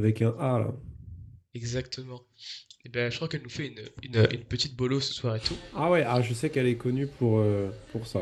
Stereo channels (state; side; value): identical; both; correlation 1.00